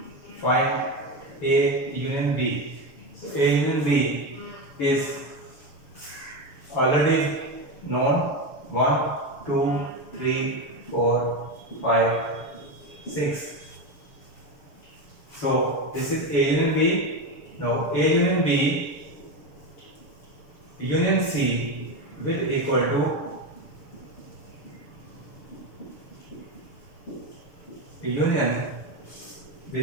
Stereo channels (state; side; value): late; right; 6.8 ms